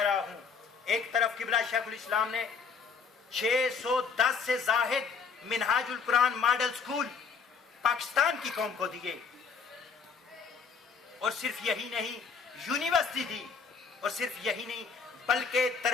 رہا ہوں. ایک طرف قبلہ شیخ الاسلام نے 610 سے زائد منہاج القرآن ماڈل سکول پاکستان کی قوم کو دیے، اور صرف یہی نہیں یونیورسٹی دی، اور صرف یہی نہیں بلکہ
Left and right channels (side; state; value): right; quieter; 5.7 dB